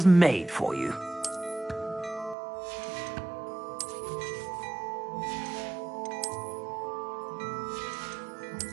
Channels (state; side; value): drops out; left; at 2.4 s